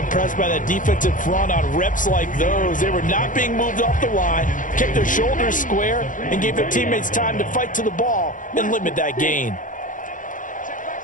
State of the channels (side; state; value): right; late; 0.38 ms